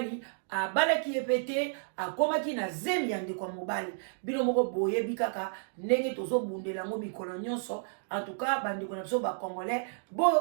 abalaki epete akomaki na zemi ya ndeko mobali bino moko boyebi kaka ndenge tozobundela ngo mikolo nyonso en tout cas bandeko na biso ba congolais bo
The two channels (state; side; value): silent; left; digital silence